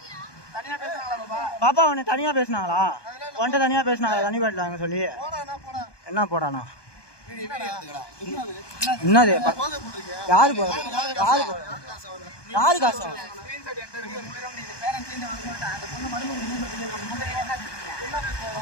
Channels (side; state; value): right; late; 1.2 ms